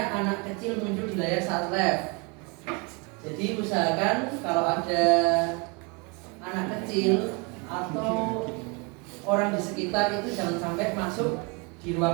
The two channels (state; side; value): quieter; left; 31.0 dB